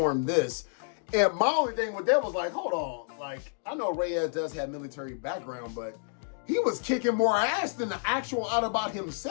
this. And my only thing with that was like, hold on. Like, I know Reyes does have military background, but he was kicking more ass than the actual Autobot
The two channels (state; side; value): silent; right; digital silence